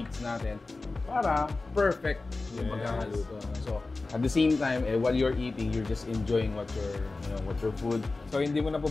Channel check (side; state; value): right; quieter; 3.5 dB